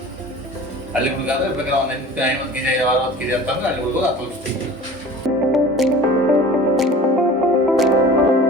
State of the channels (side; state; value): both; normal; correlation 0.41